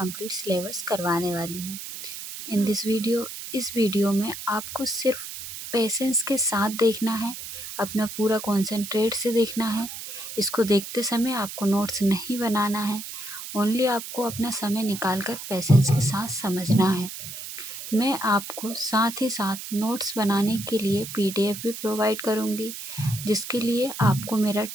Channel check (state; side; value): noise; right; hiss, 9 dB below the sound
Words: सिलेबस करवाने वाली हूँ। इस वीडियो में आपको सिर्फ पेशेंस के साथ देखना है, अपना पूरा कॉन्सेंट्रेट से देखना है। इसको देखते समय आपको नोट्स नहीं बनाना है, ओनली आपको अपना समय निकाल कर पेशेंस के साथ समझना है। मैं आपको साथ ही साथ नोट्स बनाने के लिए PDF भी प्रोवाइड करूँगी, जिसके लिए आपको मेरा